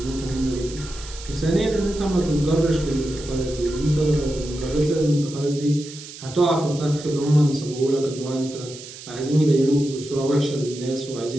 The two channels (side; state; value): right; noise; hiss, 14 dB below the sound